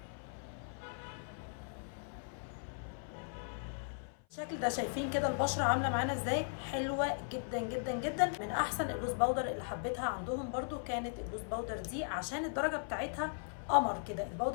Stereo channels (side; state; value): right; silent; 53 dB below the other